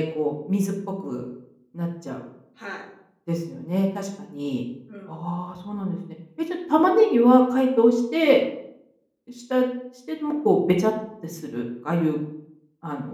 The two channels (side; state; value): both; identical; correlation 1.00